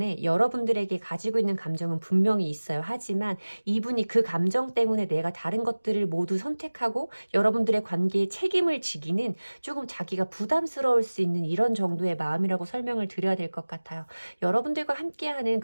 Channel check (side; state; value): both; inverted; correlation -1.00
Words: 여러분들에게 가지고 있는 감정은 분명히 있어요. 하지만 이분이 그 감정 때문에 내가 다른 것들을 모두 선택하고 여러분들의 관계에 책임을 지기는 조금 자기가 부담스러울 수 있는 이런 정도의 마음이라고 설명을 드려야 될 것 같아요. 여러분들과 함께하는